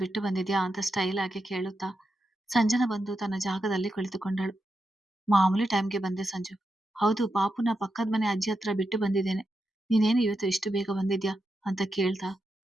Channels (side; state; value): both; normal; correlation 0.87